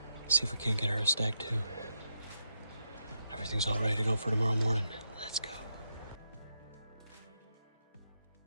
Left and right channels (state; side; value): inverted; both; correlation -0.82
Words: See if we can't get her a stag too. Everything's all ready to go for tomorrow morning. Let's go.